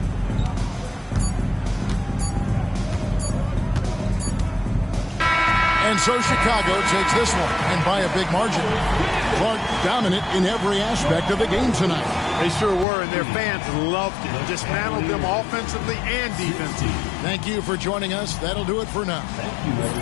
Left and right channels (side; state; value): right; drops out; at 12.9 s